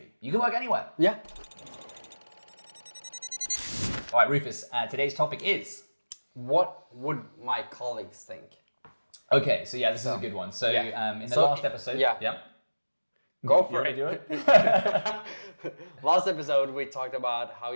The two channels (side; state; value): both; inverted; correlation -1.00